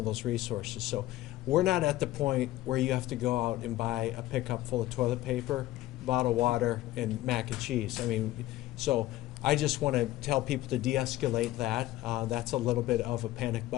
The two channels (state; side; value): quieter; right; 15.7 dB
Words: those resources. So we're not at the point where you have to go out and buy a pickup full of toilet paper, bottled water, and mac and cheese. I mean, so I just want to tell people to de-escalate that. That's a little bit of a panic